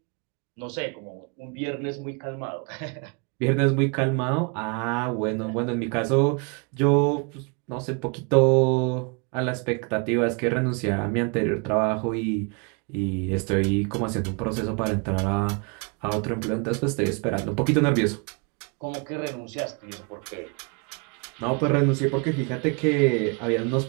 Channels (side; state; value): left; quieter; 33.9 dB